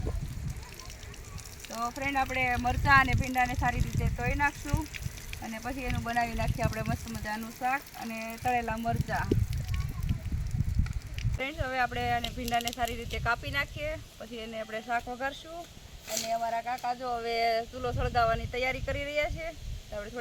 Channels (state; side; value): identical; both; correlation 1.00